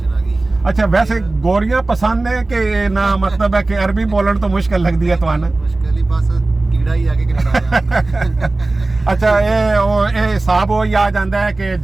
ਆ ਗਈ। अच्छा वैसे गोरियां पसंद है कि ना, मतलब है कि अरबी बोलन तो मुश्किल लगती है ਤੁਹਾਨੂੰ? ਮੁਸ਼ਕਲ ਹੀ ਬਸ ਕੀੜਾ ਹੀ ਆ ਕੇ ਕੈਨੇਡਾ ਅੱਛਾ ਇਹ ਹਿਸਾਬ ਉਹ ਹੀ ਆ ਜਾਂਦਾ ਹੈ ਕਿ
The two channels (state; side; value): quieter; left; 3.1 dB